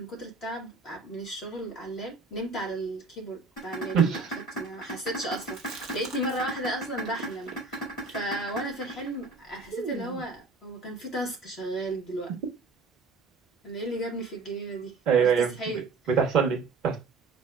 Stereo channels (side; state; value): left; quieter; 4.1 dB